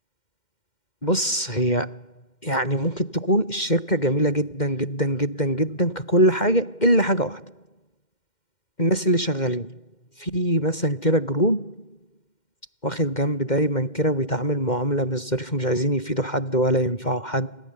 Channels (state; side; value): late; right; 2.1 ms